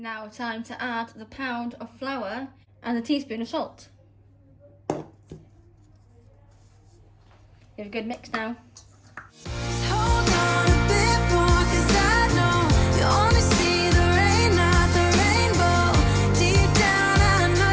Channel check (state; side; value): identical; both; correlation 1.00